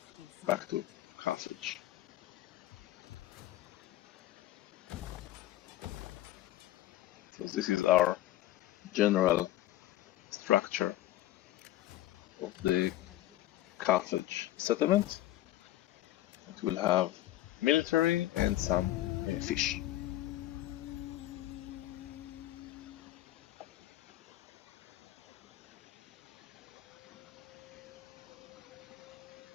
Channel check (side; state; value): right; quieter; 14.6 dB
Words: back to Carthage. So this is our general structure of the Carthage settlement. It will have military and some fish.